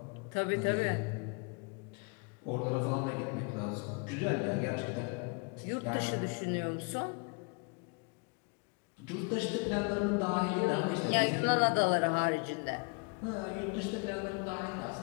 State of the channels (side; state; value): right; quieter; 34.0 dB